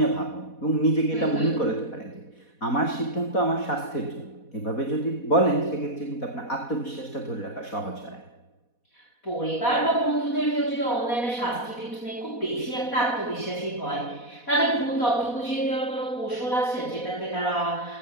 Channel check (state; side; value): late; right; 4.1 ms